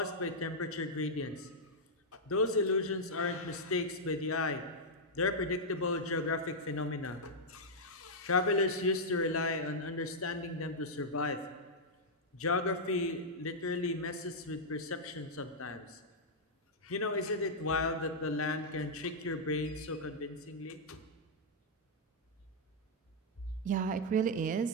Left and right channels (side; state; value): both; normal; correlation -0.06